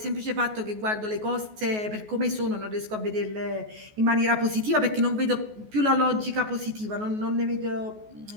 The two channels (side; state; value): left; late; 14 ms